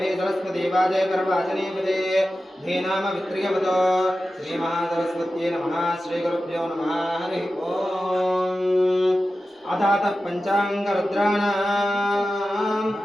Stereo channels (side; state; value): both; normal; correlation 0.93